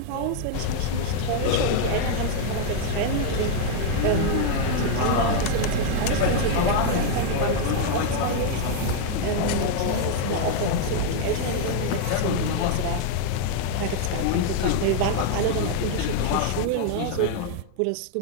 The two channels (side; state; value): both; different; correlation 0.00